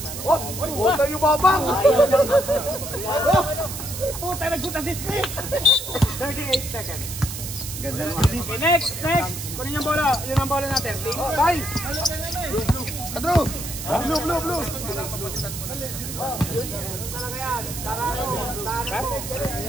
Huwag tayo babang! Puta, nagsuta si Steve. 38 seconds. Ganda naman. Okay, next. Kunin yung bola. Yun ang bola natin. Bye! Andrew! Blue!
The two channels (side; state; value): right; noise; hiss, 8 dB below the sound